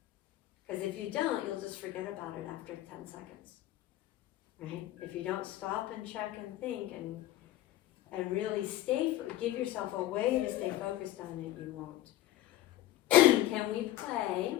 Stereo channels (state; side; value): quieter; right; 14.4 dB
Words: Because if you don't, you'll just forget about it after 10 seconds, right? If you don't stop and check and think and and really give yourself a way to stay focused on it, you won't. Can we play